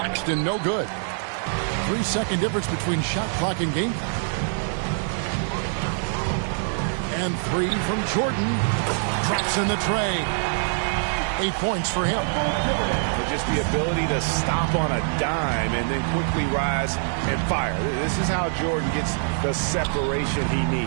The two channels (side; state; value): left; silent; 62 dB below the other